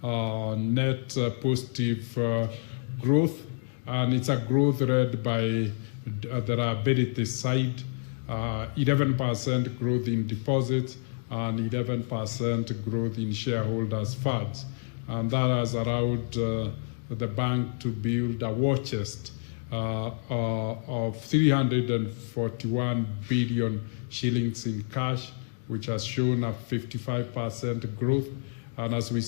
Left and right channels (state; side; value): silent; right; digital silence